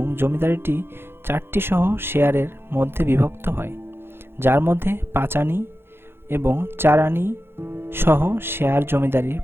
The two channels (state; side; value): late; left; 0.11 ms